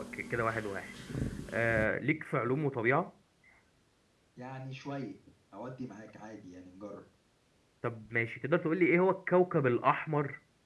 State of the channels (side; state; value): both; identical; correlation 1.00